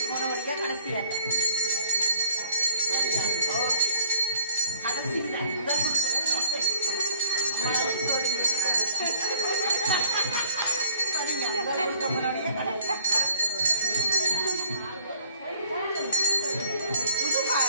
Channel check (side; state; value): both; inverted; correlation -0.53